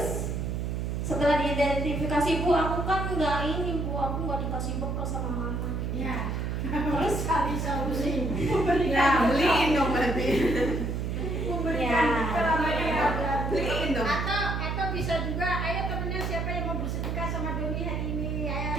setelah diidentifikasi, Bu, aku kan nggak ini, Bu, aku nggak dikasih bekal sama mama. Ya. Terus Cari solusi. Ya, beliin dong berarti. ya. Beliin dong. Atau bisa juga, ayo temennya siapa yang mau bersedekah sama Doni hari ini? Ayo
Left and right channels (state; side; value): noise; right; hum, 2 dB below the sound